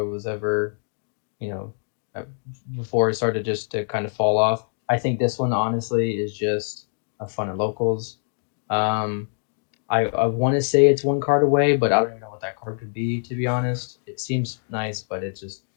it was ever, you know, uh, before it started just to kind of fall off. I think this one honestly is just a fun at locals. Um, I want to say it's one card away, but I don't even know what that card could be, to be honest. It seems nice, but it's just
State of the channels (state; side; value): silent; right; digital silence